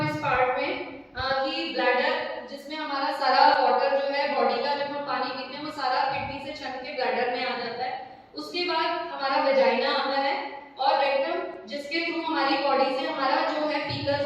इस पार्ट में कि ब्लैडर, जिसमें हमारा सारा वाटर जो है बॉडी का, जब हम पानी पीते हैं वो सारा किडनी से छन के ब्लैडर में आ जाता है। उसके बाद हमारा वेजाइना आता है और रेक्टम, जिसके थ्रू हमारी बॉडी से हमारा जो है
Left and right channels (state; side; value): identical; both; correlation 1.00